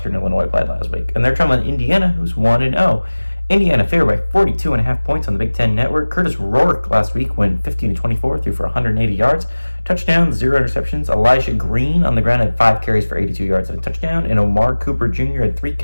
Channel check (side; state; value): both; inverted; correlation -1.00